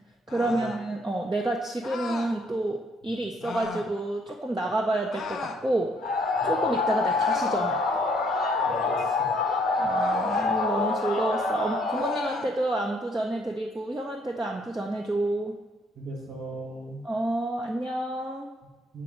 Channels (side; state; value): both; normal; correlation 0.67